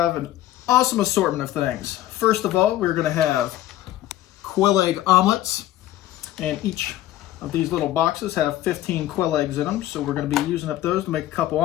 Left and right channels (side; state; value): right; quieter; 14.0 dB